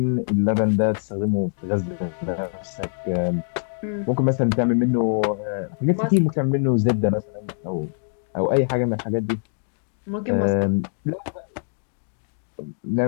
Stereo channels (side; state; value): right; silent; digital silence